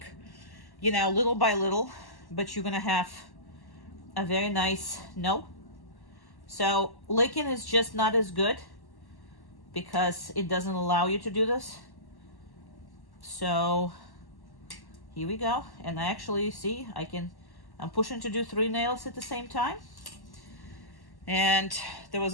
you know, little by little, but you're gonna have a very nice no. So licking is just not as good because it doesn't allow you to do this. So here we go. And I actually see I'm pushing to do 3 nails at the same time. And there was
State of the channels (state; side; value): late; right; 1.1 ms